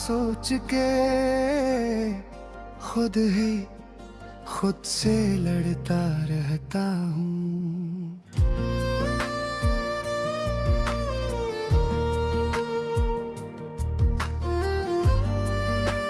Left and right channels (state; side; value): identical; both; correlation 1.00